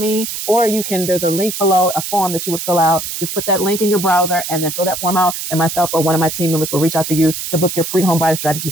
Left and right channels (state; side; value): noise; right; hiss, 6 dB below the sound